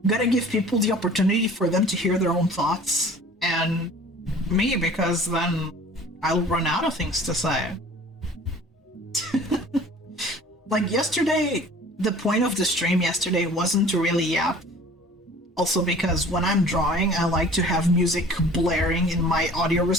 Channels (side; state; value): both; normal; correlation 0.47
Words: opportunity for them to hear their own thoughts and me, because then I'll run out of things to say. Like yesterday, the point of the stream yesterday wasn't to really yap. Also because when I'm drawing, I like to have music blaring in my audio